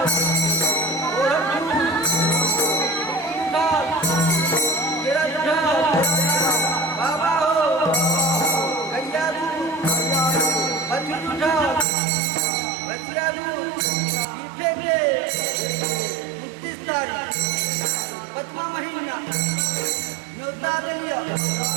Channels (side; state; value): left; drops out; at 11.9 s